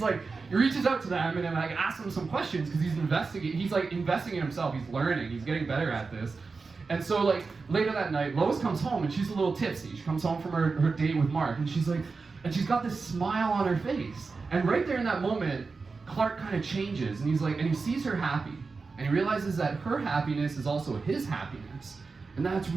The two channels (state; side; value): quieter; left; 4.4 dB